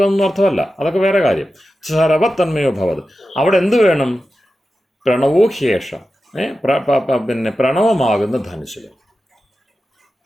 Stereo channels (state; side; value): normal; both; correlation 0.92